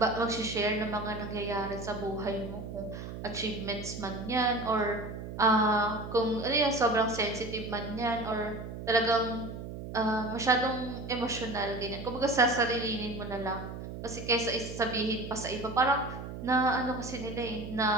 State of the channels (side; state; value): right; noise; hum, 9 dB below the sound